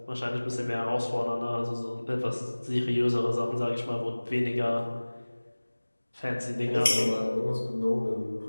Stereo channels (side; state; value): both; inverted; correlation -1.00